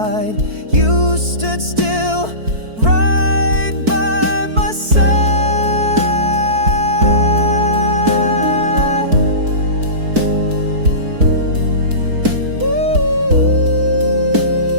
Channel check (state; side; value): late; left; 4.5 ms